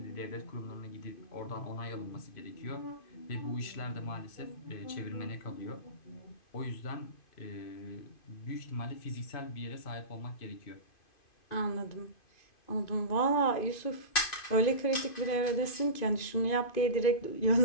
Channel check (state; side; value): late; right; 2.5 ms